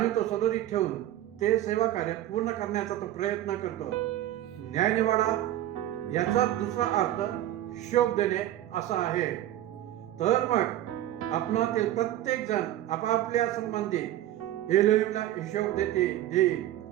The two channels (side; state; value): left; quieter; 13.4 dB